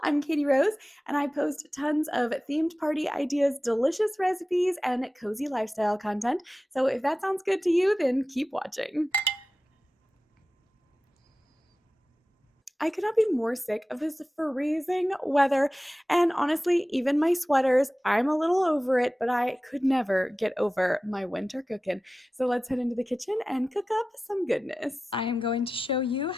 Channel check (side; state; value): both; normal; correlation 0.95